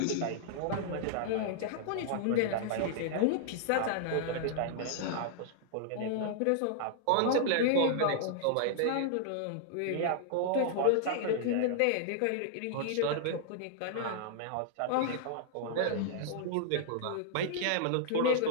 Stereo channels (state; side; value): different; both; correlation -0.01